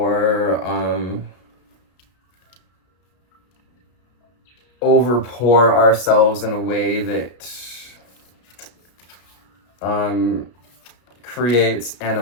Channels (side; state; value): right; late; 33 ms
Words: overpour ourselves in a way that creates